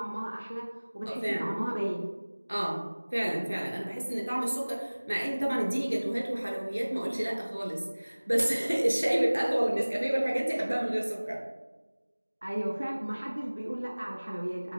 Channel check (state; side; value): inverted; both; correlation -1.00